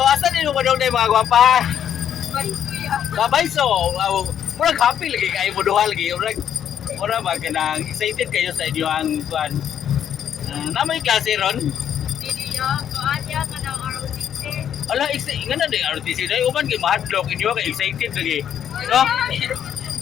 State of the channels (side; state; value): right; quieter; 9.4 dB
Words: din mo daw mga gwapa? Babay so, murag happy lagi kayo mo duha lagi, murag ba kanang excited kayo sa inyo ang kuan. Namay klase ron? Ala, nga na din RTC dahil uman kayo mahadlok inyo kayo excited lagi. No?